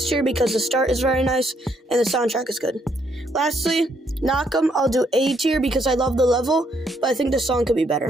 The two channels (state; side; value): normal; both; correlation 0.72